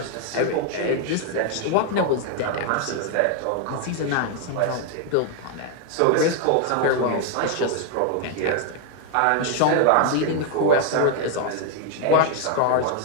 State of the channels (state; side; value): different; both; correlation 0.00